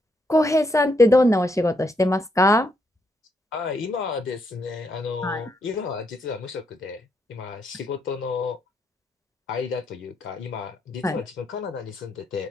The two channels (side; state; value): both; normal; correlation 0.77